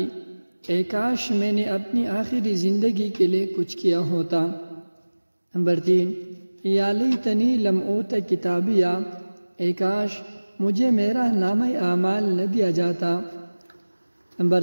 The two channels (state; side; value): inverted; both; correlation -1.00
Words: اے کاش میں نے اپنی آخری زندگی کے لیے کچھ کیا ہوتا۔ نمبر 3، یا لیتنی لم اوت کتابیہ، اے کاش مجھے میرا نامہ اعمال نہ دیا جاتا۔ نمبر